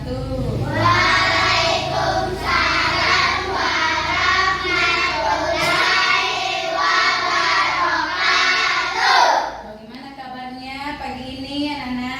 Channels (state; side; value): identical; both; correlation 1.00